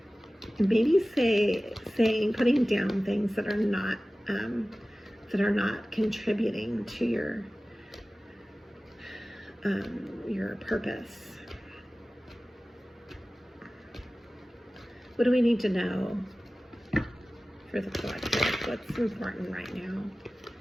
maybe putting down things that are not contributing to your purpose. What do we need to know for the collective? What's important right now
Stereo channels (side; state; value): both; normal; correlation 0.97